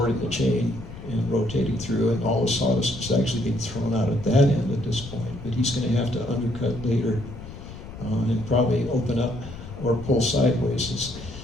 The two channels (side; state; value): left; noise; rumble, 13 dB below the sound